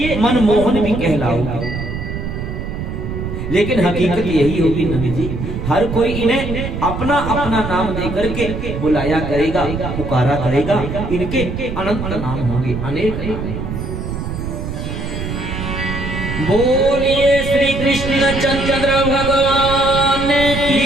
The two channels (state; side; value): noise; right; rumble, 5 dB below the sound